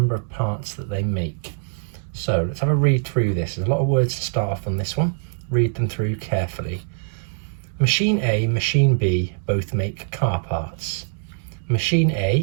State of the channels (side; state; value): left; silent; digital silence